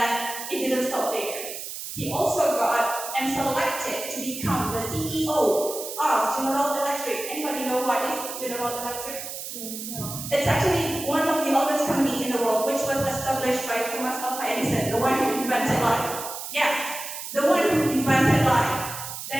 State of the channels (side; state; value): right; noise; hiss, 8 dB below the sound